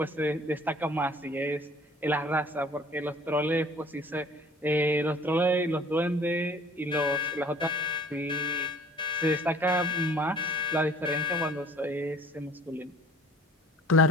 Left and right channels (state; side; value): normal; both; correlation 0.51